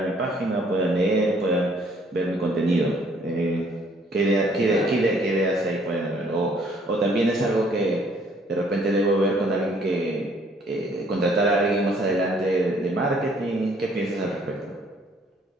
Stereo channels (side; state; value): both; normal; correlation 0.62